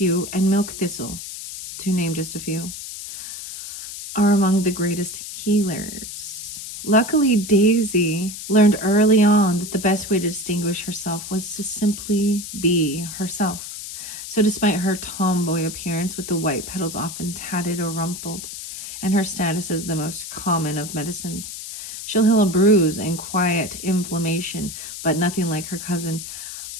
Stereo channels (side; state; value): left; noise; hiss, 9 dB below the sound